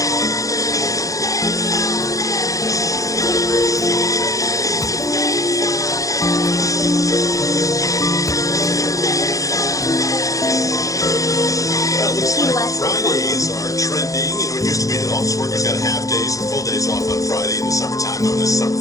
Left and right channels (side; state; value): right; late; 0.16 ms